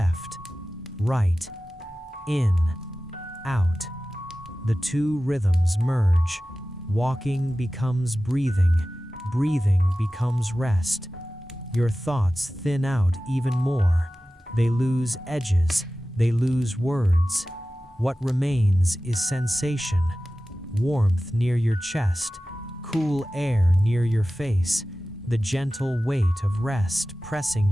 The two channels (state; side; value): normal; both; correlation 0.95